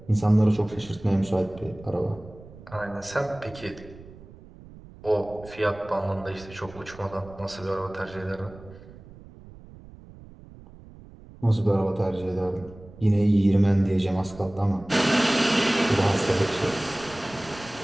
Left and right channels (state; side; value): noise; right; rumble, 19 dB below the sound